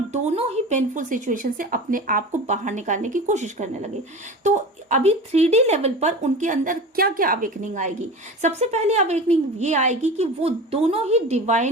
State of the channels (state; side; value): normal; both; correlation 0.32